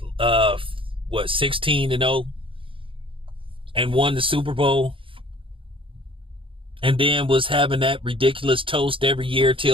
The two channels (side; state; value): left; late; 0.25 ms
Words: 16-0 and won the Super Bowl. And then was having that ridiculous toast every year